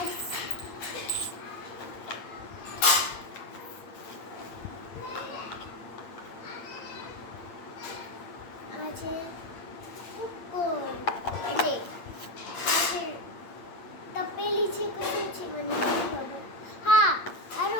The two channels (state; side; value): late; right; 8.6 ms